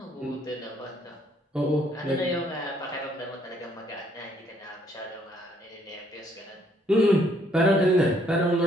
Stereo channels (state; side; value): normal; both; correlation 0.67